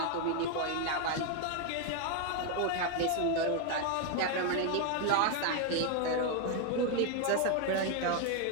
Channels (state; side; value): different; both; correlation 0.01